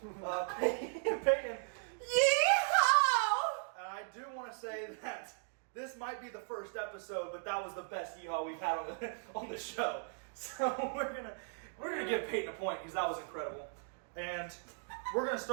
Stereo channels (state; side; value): silent; left; digital silence